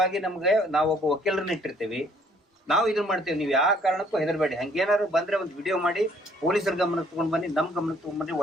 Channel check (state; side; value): normal; both; correlation 0.62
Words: ನಮ್ಗೆ ನಾವೊಬ್ಬ ವಕೀಲರನ್ನ ಇಟ್ಟಿರ್ತೀವಿ, ನಾವು ಇದನ್ನ ಮಾಡ್ತೇವೆ. ನೀವು ಯಾವ ಕಾರಣಕ್ಕೂ ಹೆದರ್ಬೇಡಿ. ಹಂಗೇನಾದ್ರು ಬಂದ್ರೆ ಒಂದು ವಿಡಿಯೋ ಮಾಡಿ ಪೊಲೀಸರ ಗಮನಕ್ಕೆ ತಗೊಂಡ್ ಬನ್ನಿ, ನಮ್ ಗಮನಕ್ಕೆ ತಗೊಂಡ್ ಬನ್ನಿ.